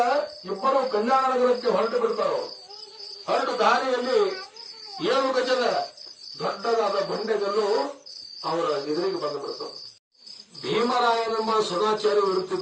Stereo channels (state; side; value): identical; both; correlation 1.00